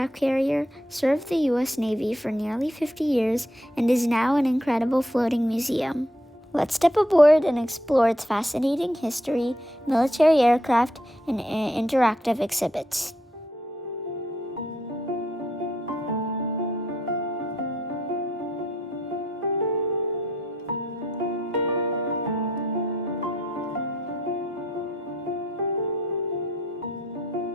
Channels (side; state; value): both; normal; correlation 0.73